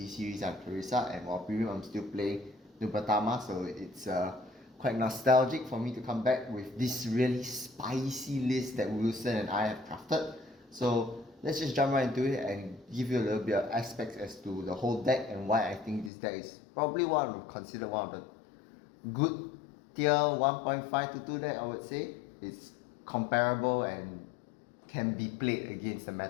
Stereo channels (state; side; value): drops out; right; at 16.1 s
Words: series I'm Clarissa, and while premium I'm still playing Nubatama. So it's quite nostalgic for me to come back with this really spicy list that Wilson and I have crafted. So let's just jump right into it and give you a little bit of aspects as to the whole deck and why I think this deck is probably considered one of the good tier 1.5 to 2 deck. I would say it's comparable and can be played against the